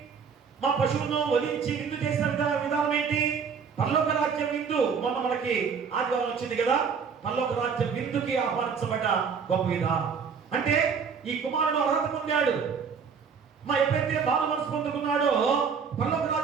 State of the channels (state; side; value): quieter; left; 6.2 dB